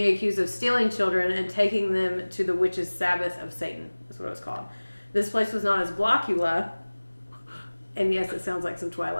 accused of stealing children and taking them to the witch's Sabbath of Satan. That's what it was called. This place was known as Blockula. And yes, it sounds like some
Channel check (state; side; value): inverted; both; correlation -1.00